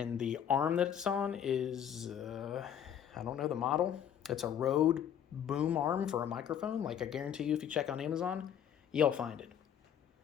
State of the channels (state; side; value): quieter; right; 9.2 dB